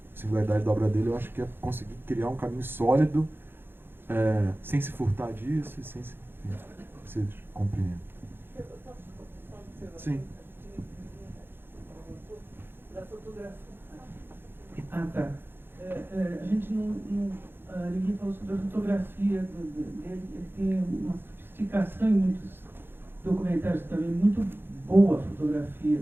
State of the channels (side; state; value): left; late; 0.10 ms